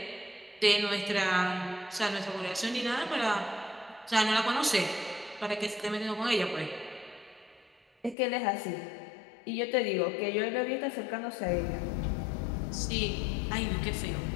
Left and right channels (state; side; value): drops out; right; at 8.2 s